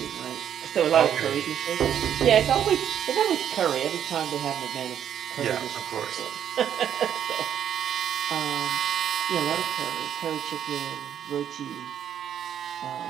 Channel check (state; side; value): quieter; left; 9.4 dB